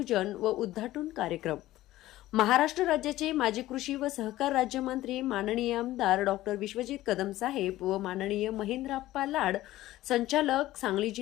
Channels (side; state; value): right; quieter; 15.7 dB